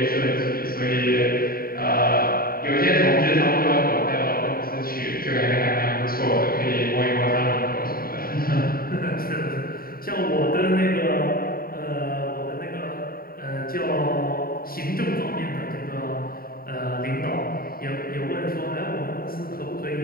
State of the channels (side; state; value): right; late; 0.43 ms